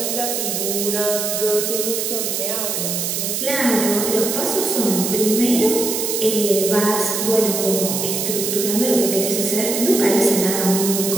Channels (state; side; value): noise; right; hiss, 1 dB below the sound